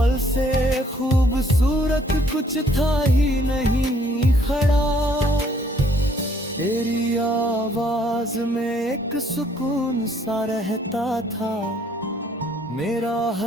से खूबसूरत कुछ था ही नहीं खड़ा। तेरी आवाज में एक सुकून सा रहता था, मेरा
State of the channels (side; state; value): both; normal; correlation 0.64